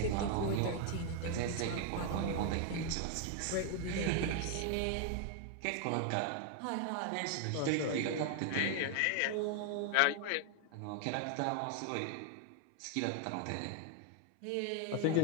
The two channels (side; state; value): both; different; correlation 0.00